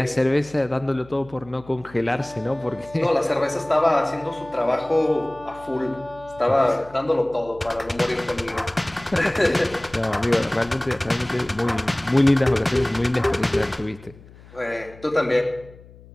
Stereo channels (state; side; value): noise; left; hum, 22 dB below the sound